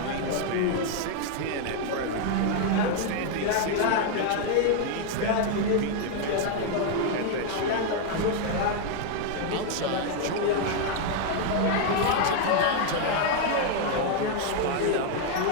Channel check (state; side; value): different; both; correlation 0.00